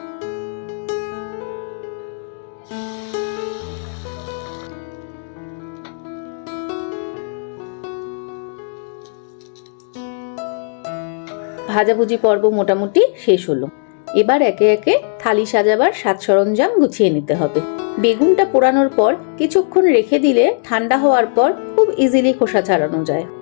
ভাজাভুজি পর্ব মোটামুটি শেষ হলো। এবার একে একে থালি সাজাবার সাজ সরঞ্জাম গুছিয়ে নিতে হবে। বেগুনটা পোড়ানোর পর কিছুক্ষণ রেখে দিলে ঠান্ডা হওয়ার পর খুব ইজিলি খোসা ছাড়ানো যায়।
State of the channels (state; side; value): silent; right; digital silence